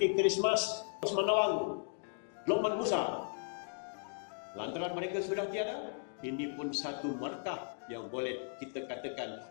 Christmas, Osman Nawang, Lokman Musa. Lantaran mereka sudah tiada, ini pun satu markah yang boleh kita katakan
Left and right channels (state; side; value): silent; right; digital silence